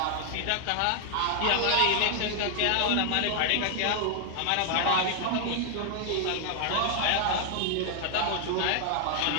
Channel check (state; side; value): different; both; correlation 0.00